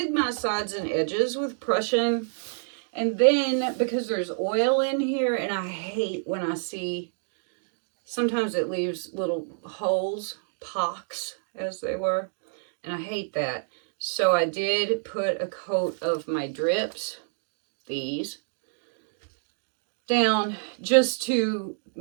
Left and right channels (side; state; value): left; silent; digital silence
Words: my sides and edges with Prussian. And then because there's oil in here, and I hate when I see, sometimes it leaves little holes, pocks as they were, and I hate that. So I did put a coat of my drips, these, down just to